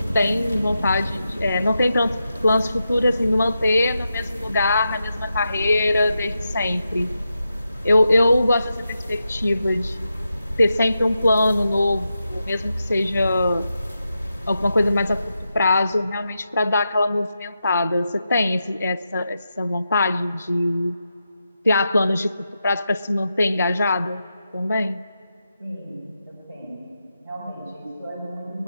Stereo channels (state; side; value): inverted; both; correlation -0.88